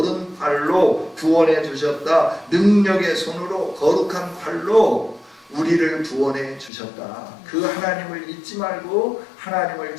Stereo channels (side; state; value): right; drops out; at 6.7 s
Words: 구원해 주셨다. 능력의 손으로 거룩한 팔로 우리를 구원해 주셨다. 그 하나님을 잊지 말고 하나님을